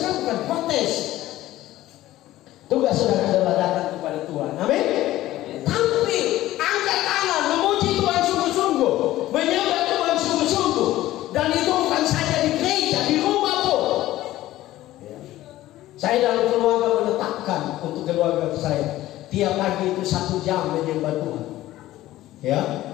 bukan protes. Tugas saudara adalah datang kepada Tuhan. Amin. Tampil, angkat tangan, memuji Tuhan sungguh-sungguh, menyembah Tuhan sungguh-sungguh. Dan itu bukan saja di gereja, di rumah pun. Saya dalam keluarga menetapkan untuk keluarga saya tiap pagi itu 1 jam menyembah Tuhan. Ya,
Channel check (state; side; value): quieter; right; 15.4 dB